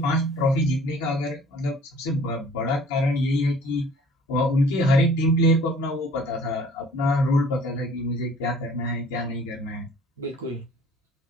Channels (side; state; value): both; normal; correlation 0.52